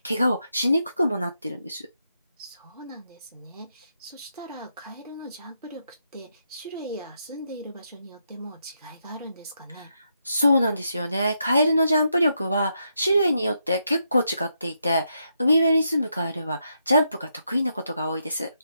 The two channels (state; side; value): inverted; both; correlation -0.80